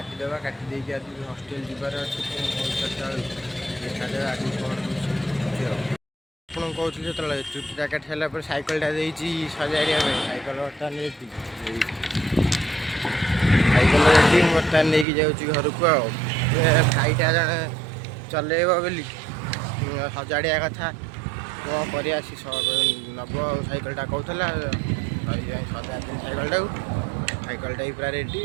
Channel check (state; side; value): drops out; left; at 15.1 s